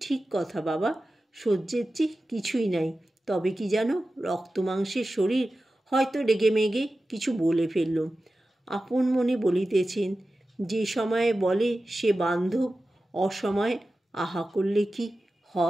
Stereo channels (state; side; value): normal; both; correlation 0.94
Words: কথা বাবা, সহ্যের চেয়ে কিছুই নাই। তবে কি জানো, রক্ত মাংসের শরীর, হয়তো রেগে মেগে কিছু বলে ফেললুম। আপন মনে বলিতেছেন, যে সময়ে বলে সে বান্ধব, অসময়ে আহা করলে কি